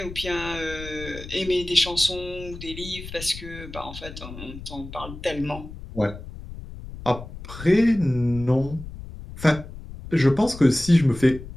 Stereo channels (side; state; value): left; noise; rumble, 13 dB below the sound